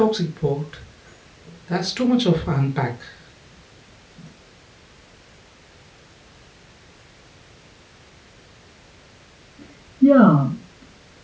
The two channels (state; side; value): identical; both; correlation 1.00